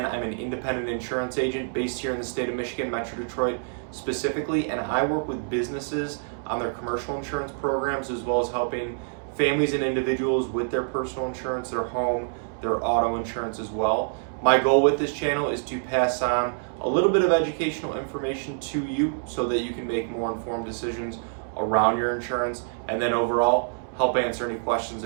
I'm an independent insurance agent based here in the state of Michigan, Metro Detroit specifically, and I work with businesses on their commercial insurance programs as well as helping families and individuals with their personal insurance, their home, their auto insurance as well. My goal with this channel is to pass on a little bit of educational information to you so that you can make more informed decisions around your insurance and then overall help answer any questions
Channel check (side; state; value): left; silent; digital silence